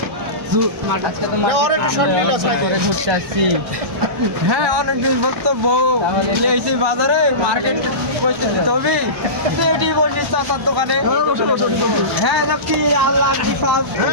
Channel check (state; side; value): late; left; 1.0 ms